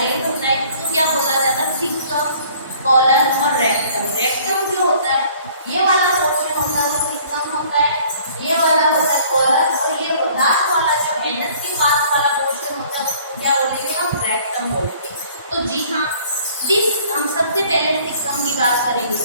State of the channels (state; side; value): inverted; both; correlation -0.54